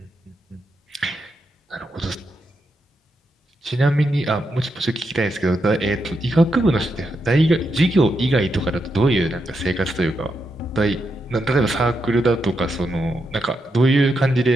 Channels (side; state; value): both; normal; correlation 0.83